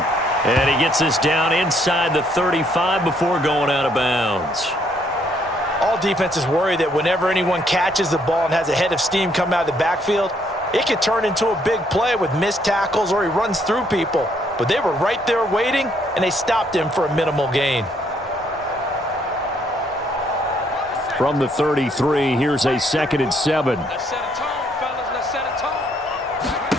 And he gets this down inside the 35 before going out of bounds. All defenses worry that whenever anyone catches the ball and has a head of steam come out of the backfield, it could turn into a big play with missed tackles or he runs through people. But they were right there waiting, and they stopped him for a minimal gain. From the 33, here's a 2nd and 7.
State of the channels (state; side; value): normal; both; correlation 0.69